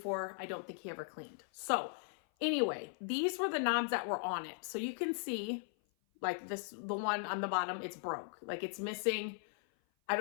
I don't think he ever cleaned. So anyway, these were the knobs that were on it. So you can see like the one on the bottom, it's broke. Like it's missing. I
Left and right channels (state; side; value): silent; right; 52 dB below the other